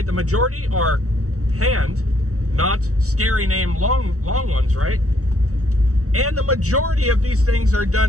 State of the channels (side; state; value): left; late; 0.65 ms